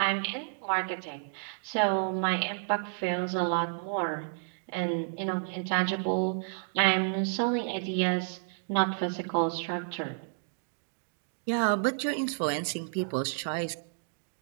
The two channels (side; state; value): left; silent; digital silence